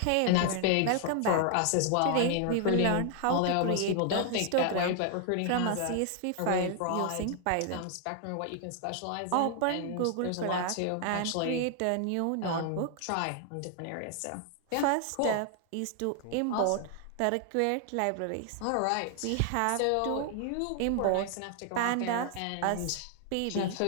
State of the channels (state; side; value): different; both; correlation 0.00